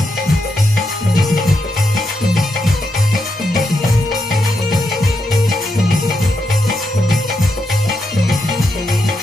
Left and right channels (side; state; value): both; normal; correlation 0.83